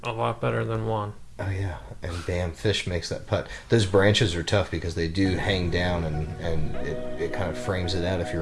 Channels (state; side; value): identical; both; correlation 1.00